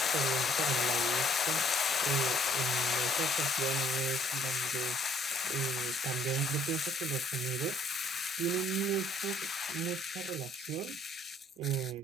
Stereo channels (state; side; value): normal; both; correlation 0.61